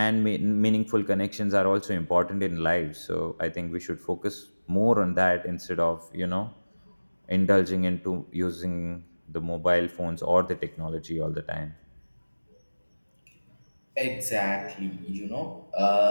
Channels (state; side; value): inverted; both; correlation -1.00